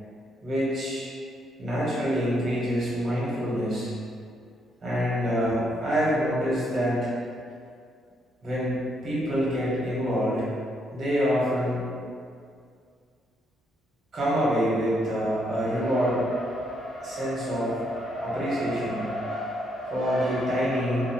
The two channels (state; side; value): normal; both; correlation 0.75